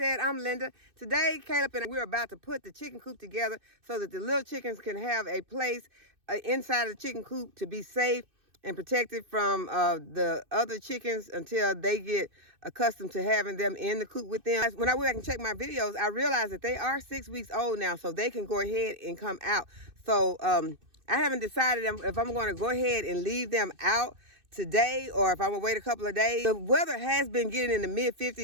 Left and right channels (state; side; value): late; left; 2.6 ms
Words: I'm Linda. Today, Caleb and we're about to put the chicken coop together so that the little chickens can have a place inside of the chicken coop to be safe and protected from the other chickens until they get accustomed to having them in the coop with them. When I went back and checked my videos, I realized that they are 6 weeks old now, so they can go ahead and come out. So I haven't decided if I'm going to go ahead and leave them out today or if I'm gonna wait a couple of days. The weather has been getting in the